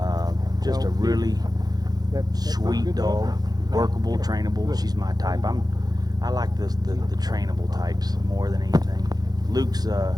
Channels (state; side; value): late; left; 0.19 ms